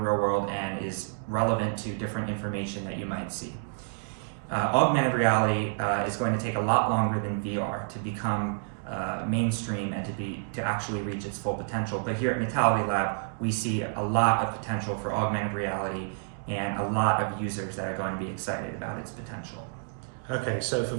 world and is relevant to different information that you might see. Augmented reality is going to take a lot longer than VR to become mainstream and to actually reach its full potential. But here at Metality Lab, we see a lot of potential for augmented reality and a lot of users that are going to be excited about its potential. Okay, so for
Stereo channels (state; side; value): silent; left; digital silence